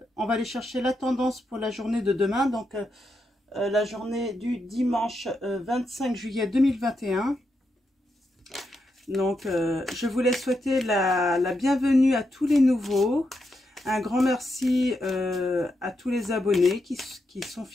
va aller chercher la tendance pour la journée de demain, donc la journée du dimanche 25 juillet 2021. Donc je voulais souhaiter la bienvenue à tous les nouveaux. Un grand merci à tous les abonnés qui sont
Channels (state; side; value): normal; both; correlation 0.84